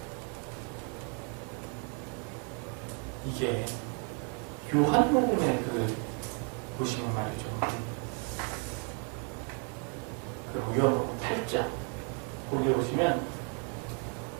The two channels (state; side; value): quieter; left; 39.2 dB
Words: 이게 요한복음의 보시면 말이죠. 그 요한복음 8장 거기 보시면